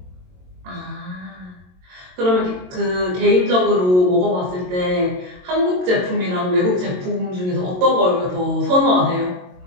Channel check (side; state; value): left; late; 22 ms